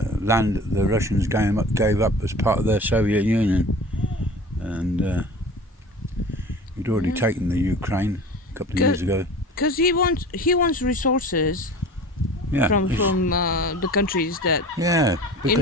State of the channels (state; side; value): normal; both; correlation 0.39